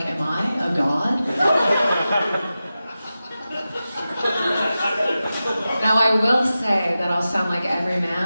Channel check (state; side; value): inverted; both; correlation -0.93